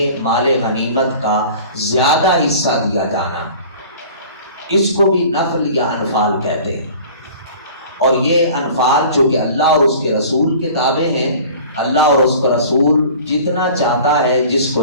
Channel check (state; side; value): inverted; both; correlation -0.44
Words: مال غنیمت کا زیادہ حصہ دیا جانا، اس کو بھی نفل یا انفال کہتے ہیں۔ اور یہ انفال جو کہ اللہ اور اس کے رسول کے تابع ہیں، اللہ اور اس کا رسول جتنا چاہتا ہے جس